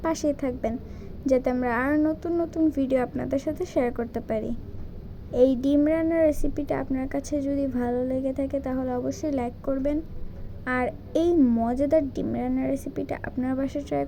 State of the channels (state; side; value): identical; both; correlation 1.00